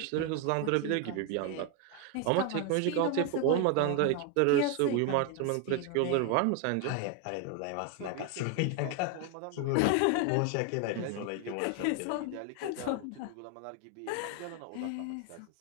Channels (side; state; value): both; different; correlation 0.01